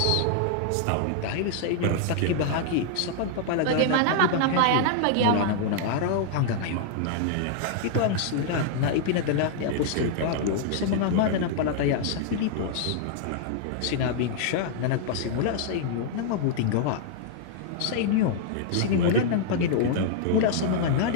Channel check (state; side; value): different; both; correlation -0.01